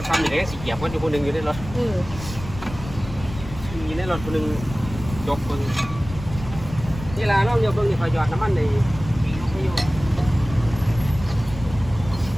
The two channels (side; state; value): left; noise; rumble, 12 dB below the sound